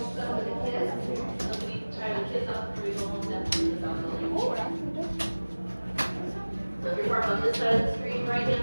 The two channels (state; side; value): inverted; both; correlation -1.00